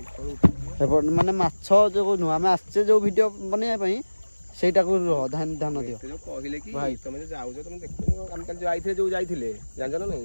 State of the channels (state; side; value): inverted; both; correlation -1.00